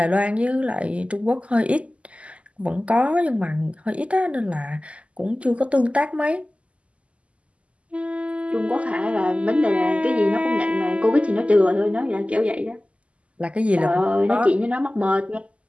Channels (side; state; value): left; late; 0.060 ms